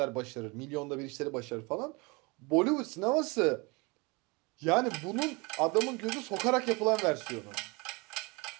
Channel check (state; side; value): quieter; left; 27.6 dB